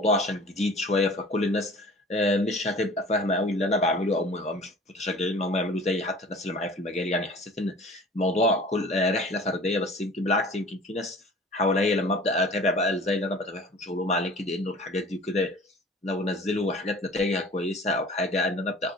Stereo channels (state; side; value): normal; both; correlation 0.45